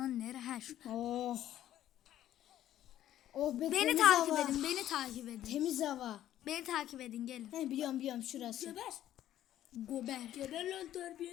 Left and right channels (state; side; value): quieter; right; 12.3 dB